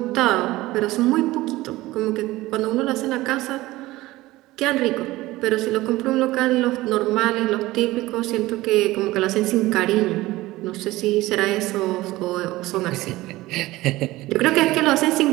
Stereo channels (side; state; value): left; quieter; 18.2 dB